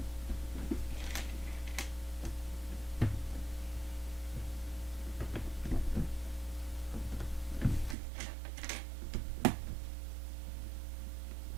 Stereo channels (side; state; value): left; drops out; at 8.0 s